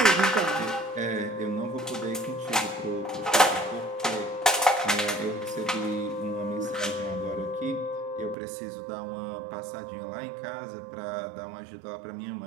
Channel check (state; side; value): drops out; left; at 8.3 s